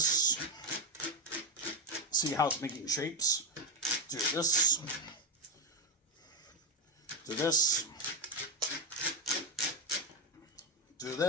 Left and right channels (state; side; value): normal; both; correlation 0.10